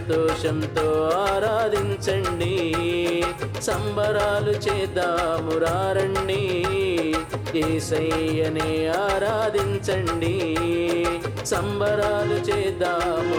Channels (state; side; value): identical; both; correlation 1.00